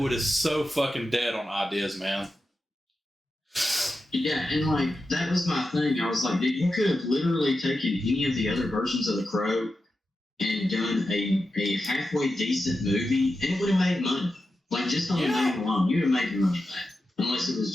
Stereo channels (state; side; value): normal; both; correlation 0.90